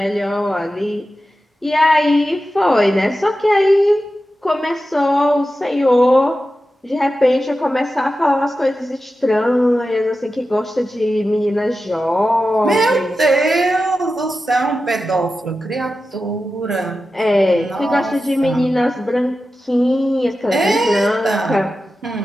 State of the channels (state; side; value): normal; both; correlation 0.92